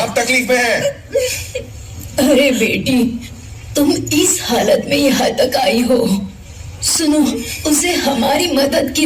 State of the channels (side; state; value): both; identical; correlation 1.00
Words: तकलीफ में है। अरे बेटी, तुम इस हालत में यहाँ तक आई हो। सुनो, उसे हमारी मदद की